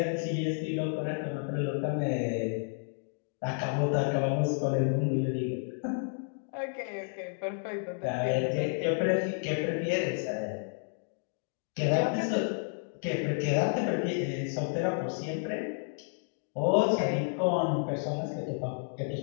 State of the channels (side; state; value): right; silent; digital silence